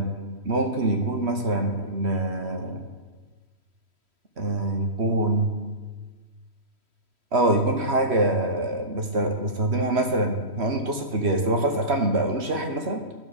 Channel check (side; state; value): left; late; 3.1 ms